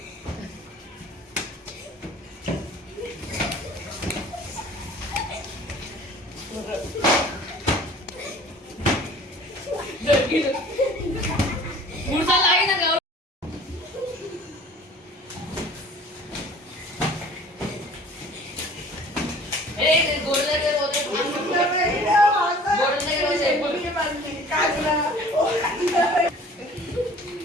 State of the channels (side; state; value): both; normal; correlation 0.48